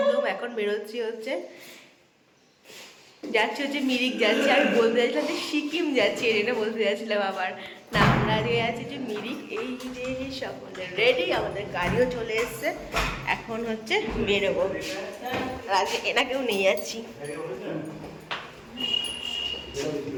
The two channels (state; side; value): identical; both; correlation 1.00